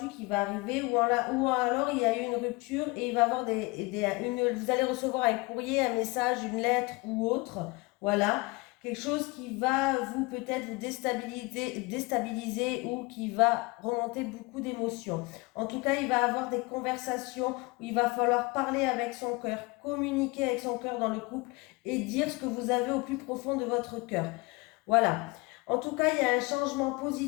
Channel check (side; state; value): right; quieter; 25.3 dB